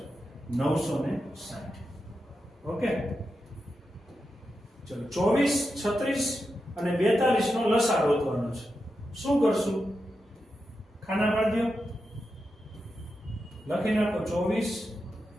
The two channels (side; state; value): both; normal; correlation 0.88